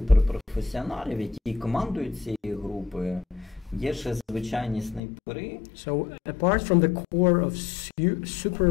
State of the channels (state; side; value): drops out; right; at 5.0 s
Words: які командують цією групою, є ще звичайні снайпери. So apart from the core of